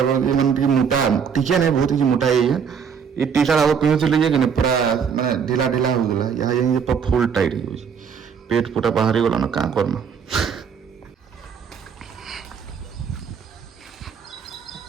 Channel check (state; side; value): quieter; left; 6.7 dB